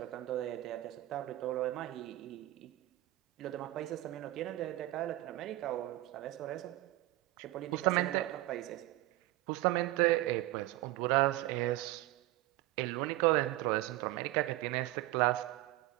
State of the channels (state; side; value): quieter; left; 17.3 dB